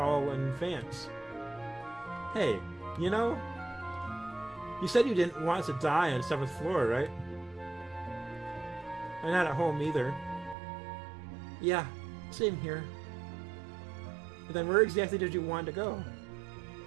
in advance. Hey, you know, you said you didn't want to die on the 7th floor, right? And not at home either. Yeah, same here. Then where exactly did you want to go?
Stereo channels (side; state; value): left; drops out; at 10.6 s